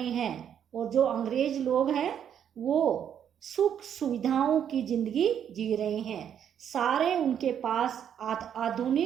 हैं और जो अंग्रेज लोग हैं वो सुख सुविधाओं की जिंदगी जी रहे हैं। सारे उनके पास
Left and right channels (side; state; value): left; quieter; 8.9 dB